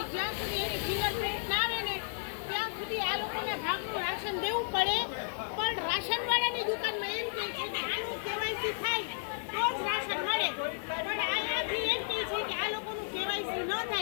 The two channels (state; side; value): silent; right; digital silence